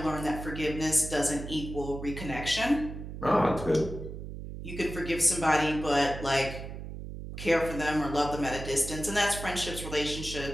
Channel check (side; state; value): right; noise; hum, 9 dB below the sound